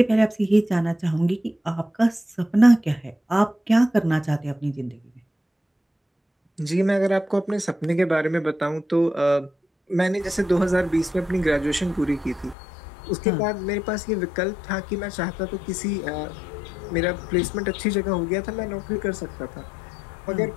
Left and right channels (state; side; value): drops out; right; at 12.6 s